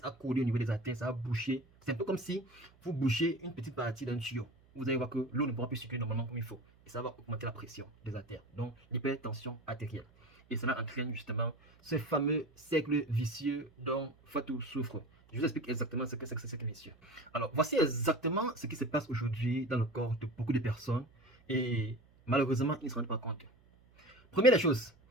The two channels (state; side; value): noise; right; hum, 29 dB below the sound